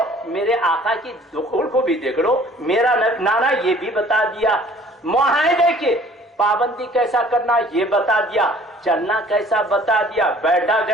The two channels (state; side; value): normal; both; correlation 0.52